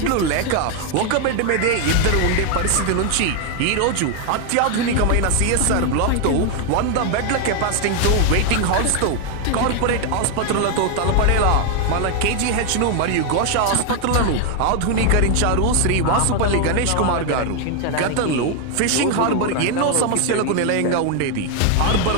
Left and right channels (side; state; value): both; different; correlation 0.01